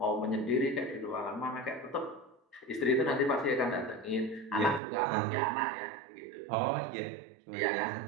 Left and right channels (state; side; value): drops out; left; at 4.8 s